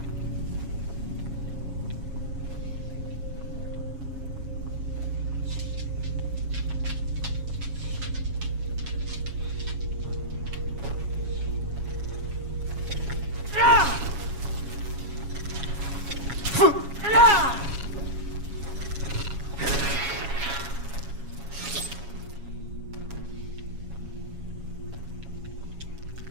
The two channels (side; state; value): left; late; 7.2 ms